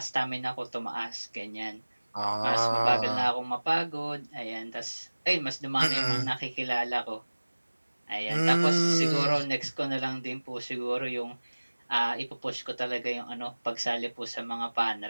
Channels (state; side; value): inverted; both; correlation -1.00